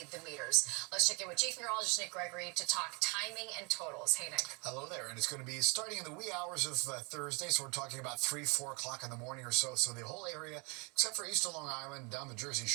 the meters. Let's check in with Chief Meteorologist Nick Gregory to talk timing and totals. Hey, Nick. Hello there, and it's going to be starting in the wee hours of Thursday, so we're talking about 3-4 o'clock in the morning or so. So the whole area, except for east of Long Island, down the Jersey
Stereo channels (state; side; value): quieter; left; 31.4 dB